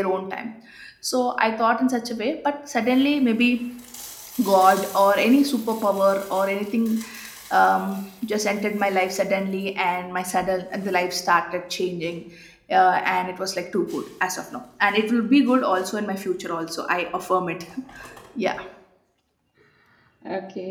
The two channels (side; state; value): both; identical; correlation 1.00